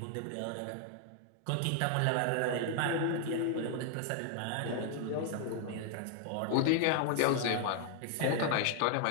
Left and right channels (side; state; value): both; different; correlation 0.00